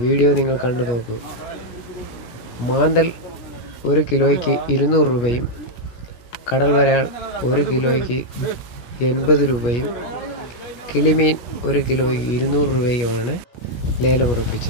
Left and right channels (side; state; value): right; late; 17 ms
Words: വീഡിയോ നിങ്ങൾ കണ്ടു നോക്കൂ. മാന്തൽ 1 കിലോയ്ക്ക് 200 രൂപയും കടൽ വരാൽ 1 കിലോയ്ക്ക് 80 രൂപയും കിളിമീൻ 1 കിലോയ്ക്ക് 200 രൂപയുമാണ്